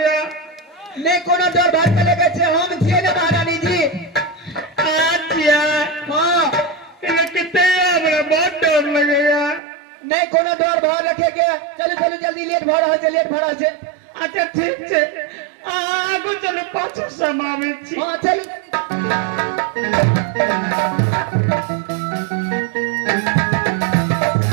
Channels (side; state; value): left; drops out; at 9.6 s